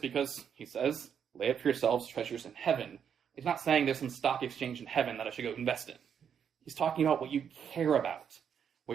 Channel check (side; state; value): left; quieter; 7.9 dB